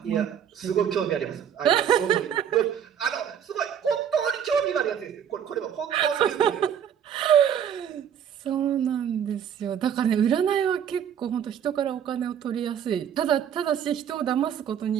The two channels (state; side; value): quieter; left; 8.7 dB